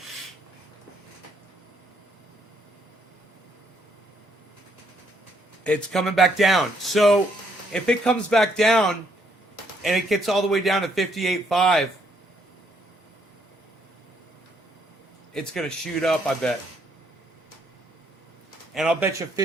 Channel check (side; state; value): both; normal; correlation 0.71